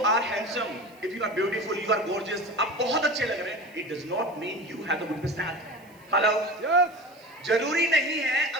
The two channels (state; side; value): noise; right; hiss, 29 dB below the sound